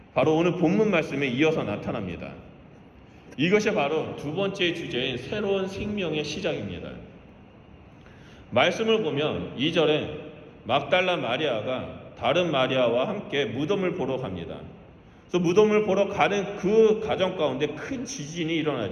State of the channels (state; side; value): identical; both; correlation 1.00